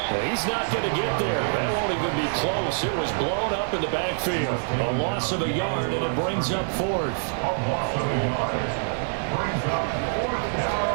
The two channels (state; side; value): silent; left; digital silence